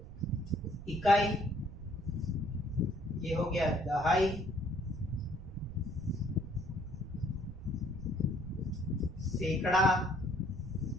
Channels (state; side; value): noise; right; rumble, 13 dB below the sound